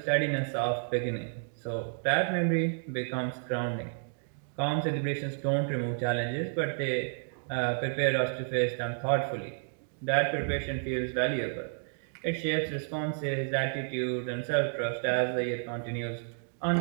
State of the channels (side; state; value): left; silent; digital silence